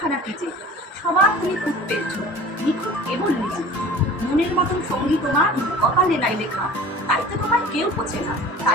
কি যে সবার তুমি খুব পেয়েছো নিখুঁত কেবল নিজে। মনের মতন সঙ্গী তোমার কপালে নাই লেখা, তাইতে তোমায় কেউ পোছে না,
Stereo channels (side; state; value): both; normal; correlation 0.42